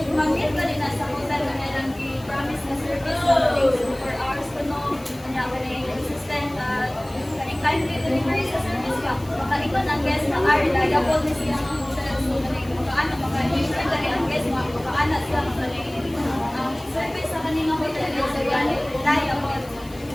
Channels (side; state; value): left; noise; hiss, 22 dB below the sound